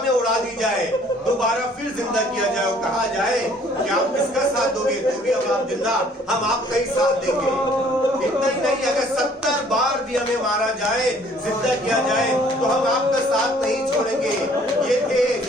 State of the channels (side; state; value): both; normal; correlation 0.58